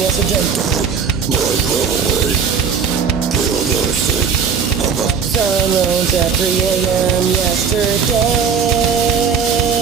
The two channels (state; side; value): quieter; left; 6.2 dB